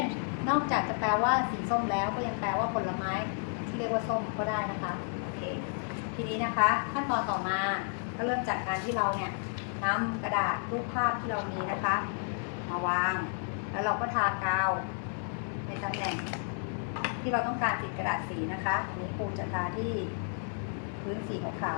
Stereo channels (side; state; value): right; silent; 55 dB below the other